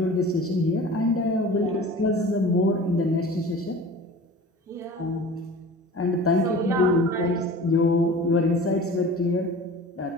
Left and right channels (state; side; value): normal; both; correlation 0.40